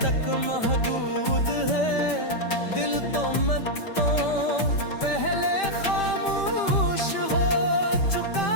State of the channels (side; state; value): right; late; 5.1 ms